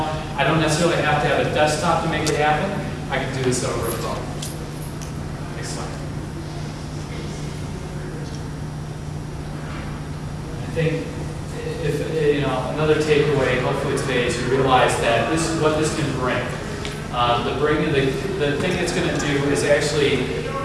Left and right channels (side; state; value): both; identical; correlation 1.00